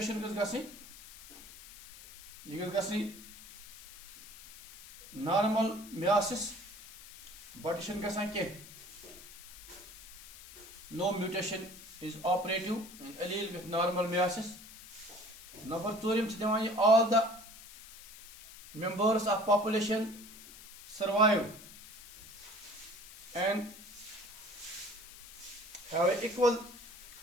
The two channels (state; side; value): noise; left; hiss, 17 dB below the sound